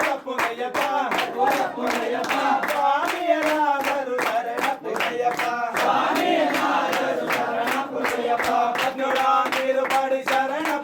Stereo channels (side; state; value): both; identical; correlation 1.00